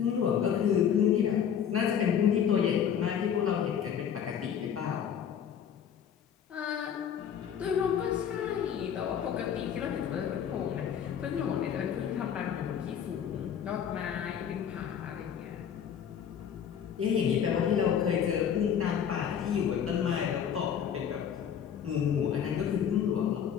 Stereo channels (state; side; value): quieter; right; 8.5 dB